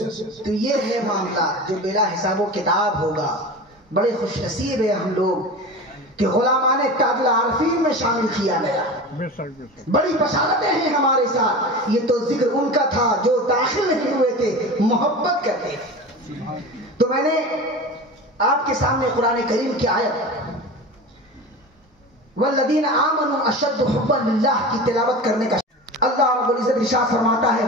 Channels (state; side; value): normal; both; correlation 0.31